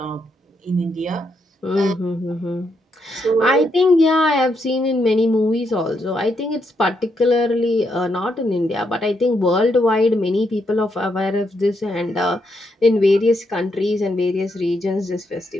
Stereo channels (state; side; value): normal; both; correlation 0.79